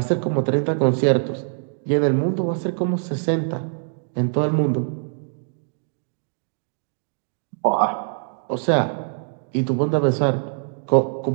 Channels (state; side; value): silent; left; digital silence